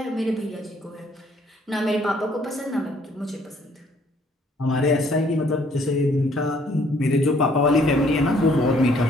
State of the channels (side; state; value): both; normal; correlation 0.63